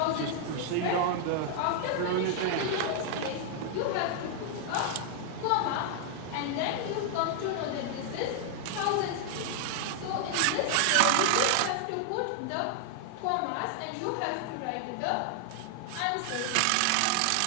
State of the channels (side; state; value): both; different; correlation 0.00